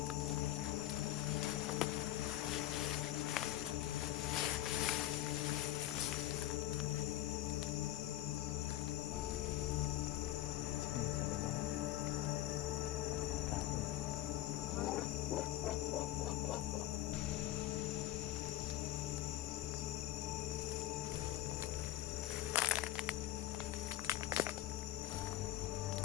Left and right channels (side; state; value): right; quieter; 14.0 dB